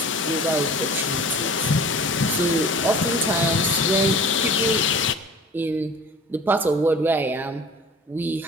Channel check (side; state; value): both; normal; correlation 0.43